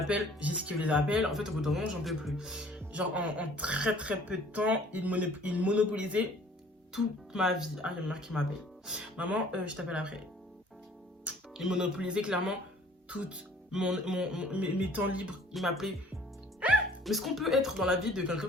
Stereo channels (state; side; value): normal; both; correlation 0.54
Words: j'esquive les appels. En fait au bout d'un moment j'en peux plus. Genre en très très peu de temps, il monopolisait toute ma vie. Ah, il y a ma mère qui m'appelle. Maman, je t'appelle après. Il monopolisait clairement toutes mes temps libres. Il m'appelait. Mais est-ce qu'on peut être dans la vie de quelqu'un